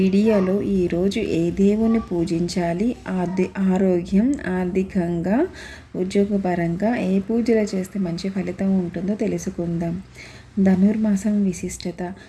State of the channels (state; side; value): identical; both; correlation 1.00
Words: ఈరోజు ఏ దేవుని పూజించాలి, ఆరోగ్యం, ఆర్థికంగా, ఉద్యోగపరంగా ఏ పూజలు చేస్తే మంచి ఫలితం ఉంటుందో తెలుసుకుందాం. ధనుర్మాసం విశిష్టత.